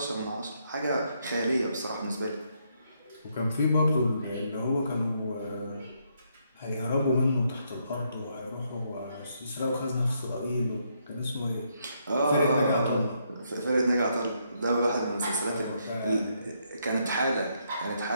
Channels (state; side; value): inverted; both; correlation -0.75